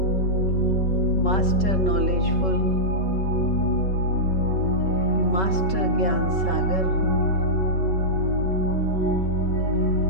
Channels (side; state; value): right; late; 5.3 ms